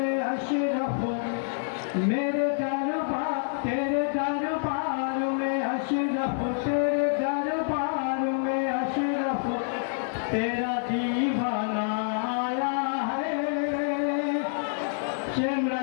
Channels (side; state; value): right; silent; 57 dB below the other